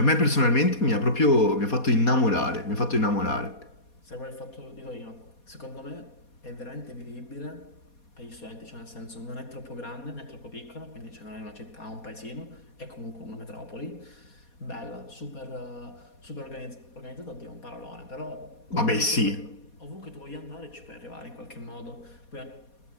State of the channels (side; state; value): right; late; 4.2 ms